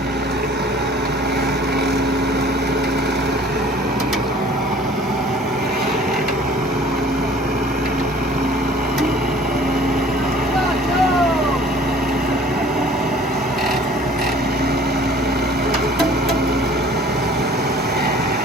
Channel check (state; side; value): normal; both; correlation 0.51